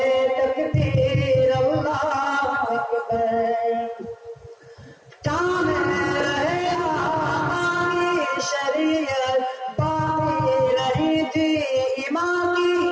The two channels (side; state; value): both; identical; correlation 1.00